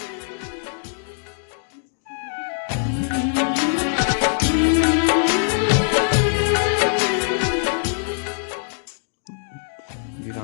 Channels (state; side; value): silent; right; digital silence